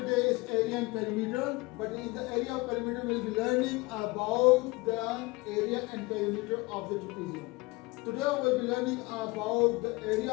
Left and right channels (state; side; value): quieter; right; 23.9 dB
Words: is area and perimeter. But in the area of perimeter, we'll be learning about the area and perimeter of the trapezium. Today, we'll be learning about the area